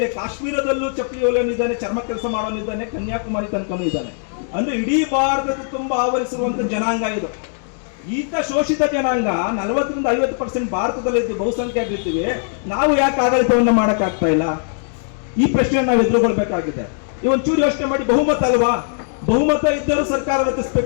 ಕಾಶ್ಮೀರದಲ್ಲೂ ಚಪ್ಪಲಿ ಹೊಲಿಯೋನಿದ್ದಾನೆ, ಚರ್ಮ ಕೆಲಸ ಮಾಡೋನಿದ್ದಾನೆ, ಕನ್ಯಾಕುಮಾರಿ ತನಕನೂ ಇದ್ದಾನೆ. ಅಂದ್ರೆ ಇಡೀ ಭಾರತದ ತುಂಬಾ ಆವರಿಸುವಂತ ಜನಾಂಗ ಇದು. ಈತ ಶೋಷಿತ ಜನಾಂಗ 40ರಿಂದ 50% ಭಾರತದಲ್ಲಿ ಇದ್ದು ಬಹುಸಂಖ್ಯಾತರಿದ್ದೀವಿ. ನಾವು ಯಾಕೆ ಆಡಳಿತವನ್ನ ಮಾಡಕ್ ಆಗ್ತಾ ಇಲ್ಲ? ಈ ಪ್ರಶ್ನೆ ನಾವು ಎದುರುಗೊಳ್ಬೇಕಾಗಿದೆ. ಒಂಚೂರು ಯೋಚನೆ ಮಾಡಿ. ಬಹುಮತ ಅಲ್ವಾ? ಬಹುಮತ ಇದ್ದರೂ ಸರ್ಕಾರ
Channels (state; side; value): silent; right; digital silence